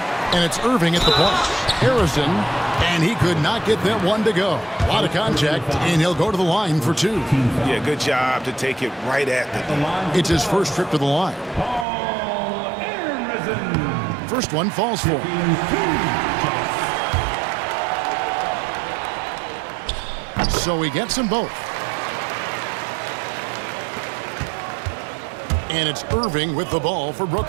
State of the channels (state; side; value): drops out; left; at 11.9 s